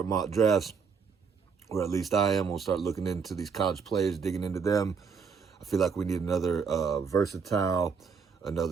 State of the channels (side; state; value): left; quieter; 5.8 dB